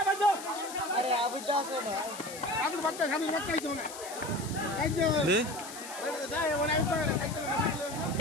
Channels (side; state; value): left; noise; hiss, 12 dB below the sound